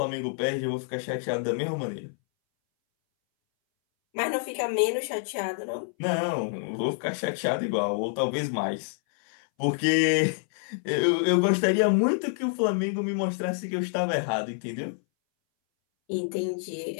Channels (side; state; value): right; silent; 60 dB below the other